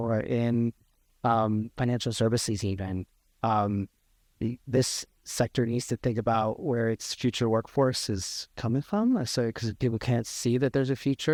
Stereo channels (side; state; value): both; identical; correlation 1.00